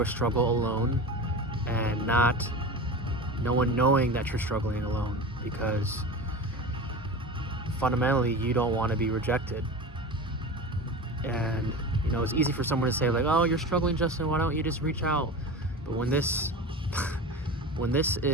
a struggle alone and not no one knowing that you're struggling alone, because fundamentally you don't want to be rejected. And it's easy for someone to say like, oh, you're struggling, Justin, why don't you just reach out? But when this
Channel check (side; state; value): both; normal; correlation 0.30